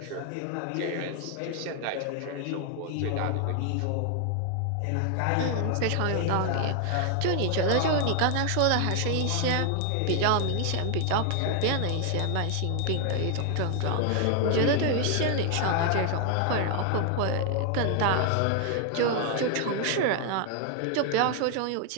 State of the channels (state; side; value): different; both; correlation 0.00